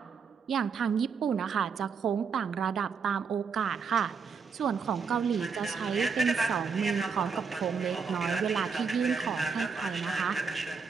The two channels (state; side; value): quieter; left; 5.7 dB